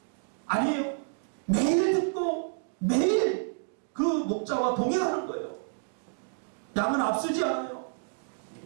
아니에요. 매일 듣고 매일 그 목자와 동행하는 거예요. 양은 앞서지 않아요.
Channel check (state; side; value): silent; left; digital silence